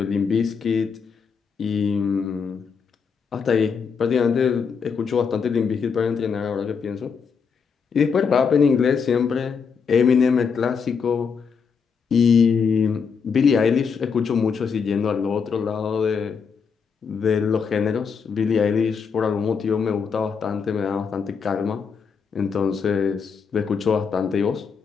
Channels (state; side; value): quieter; right; 6.0 dB